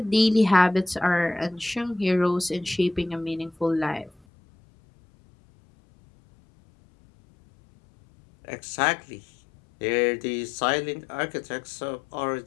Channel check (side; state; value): right; drops out; at 4.2 s